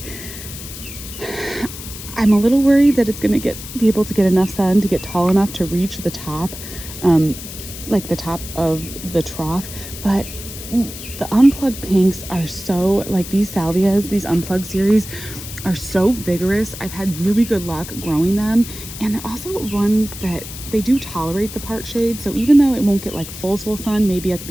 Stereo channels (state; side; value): noise; left; hiss, 12 dB below the sound